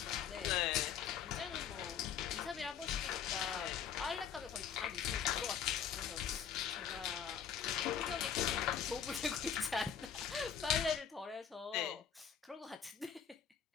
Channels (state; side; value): quieter; right; 8.0 dB